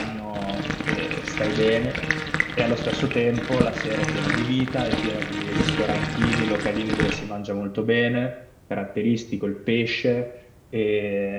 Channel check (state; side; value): identical; both; correlation 1.00